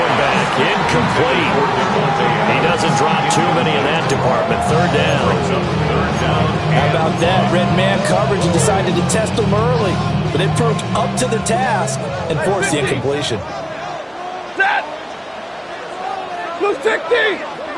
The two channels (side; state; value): both; identical; correlation 1.00